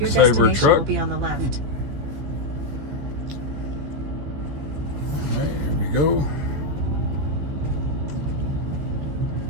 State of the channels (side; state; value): left; late; 15 ms